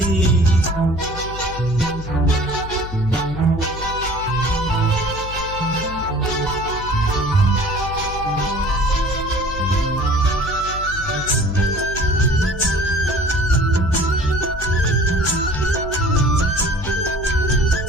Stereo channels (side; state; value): left; noise; hum, 10 dB below the sound